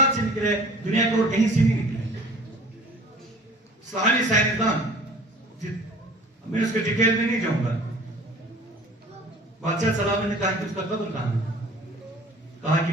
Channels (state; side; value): normal; both; correlation 0.47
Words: سے نکلے دنیا کے اور کہیں سے نہیں نکلے. اسلامی سائنسدان، میں اس کے ڈیٹیل میں نہیں جاؤں گا، بادشاہ سلام نے کہا کہ اس کا قبر کہاں ہے؟ کہا کہ